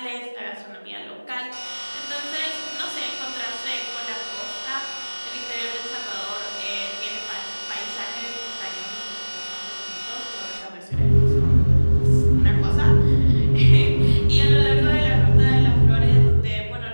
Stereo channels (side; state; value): both; inverted; correlation -1.00